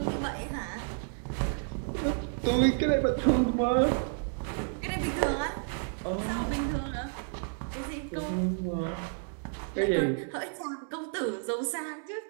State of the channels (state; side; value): silent; left; 57 dB below the other